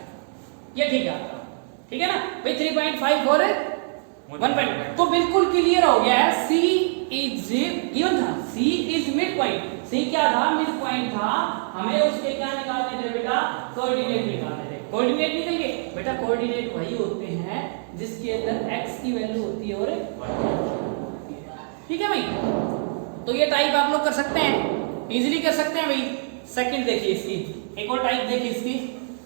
ये ठीक है आपका, ठीक है ना भाई 3.5 और 1.5, तो बिल्कुल क्लियर हो गया है। C इज गिवन था, C is mid point, C क्या था मिड पॉइंट था, हमें उसके क्या निकालने थे बेटा कोऑर्डिनेट निकालने थे। कोऑर्डिनेट निकल गए बेटा, कोऑर्डिनेट वही होते हैं जिसके अंदर x की वैल्यू होती है और होती है, ठीक है भाई। तो ये टाइप आप लोग कर सकते हैं, इजीली कर सकते हैं भाई। सेकंड देखिए इसकी, एक और टाइप देखिए इसकी,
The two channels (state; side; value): silent; left; digital silence